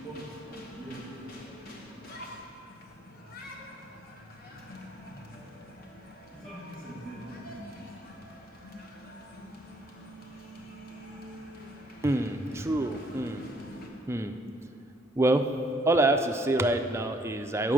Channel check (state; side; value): normal; both; correlation 0.65